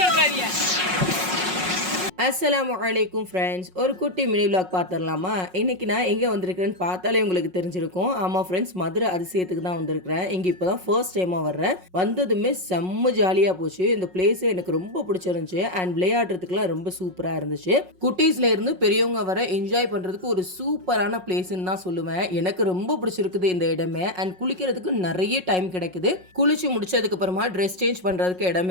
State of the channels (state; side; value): late; left; 5.5 ms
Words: அஸ்ஸலாமு அலைக்கும் ஃப்ரெண்ட்ஸ், ஒரு குட்டி மினி விலாக் பார்த்துடலாமா? இன்றைக்கி நான் எங்கே வந்திருக்கிறேன்னு பார்த்தாலே உங்களுக்கு தெரிஞ்சிருக்கும். ஆமாம் ஃப்ரெண்ட்ஸ், மதுரை அதிசயத்துக்கு தான் வந்திருக்கிறேன். இங்கே இப்போ தான் ஃபர்ஸ்ட் டைமாக வர்றேன். வந்ததுமே செம்ம ஜாலியாக போச்சு. இந்த பிளேஸே எனக்கு ரொம்ப பிடிச்சிருந்துச்சு. அண்ட் விளையாடுறதுக்குலாம் ரொம்ப சூப்பராக இருந்துச்சு. குட்டீஸ்ல இருந்து பெரியவங்க வர என்ஜாய் பண்ணுறதுக்கு ஒரு சூப்பரான பிளேஸ்ன்னு தான் சொல்லுவேன். எனக்கு ரொம்ப பிடிச்சிருக்குது இந்த இடமே. அண்ட் குளிக்கிறதுக்கு நிறைய டைம் கிடைக்குது. குளிச்சு முடிச்சதுக்கு அப்புறமா ட்ரெஸ் சேஞ்ச் பண்ணுறதுக்கு